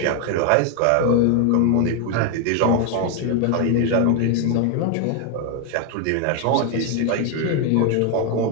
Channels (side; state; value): both; different; correlation 0.01